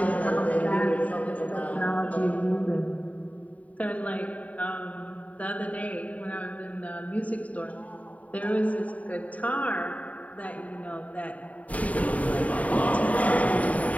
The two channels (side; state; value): right; late; 0.069 ms